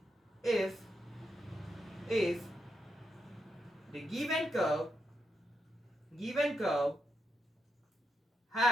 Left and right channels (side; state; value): both; normal; correlation 0.83